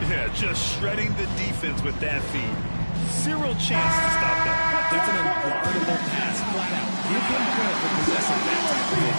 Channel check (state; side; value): inverted; both; correlation -1.00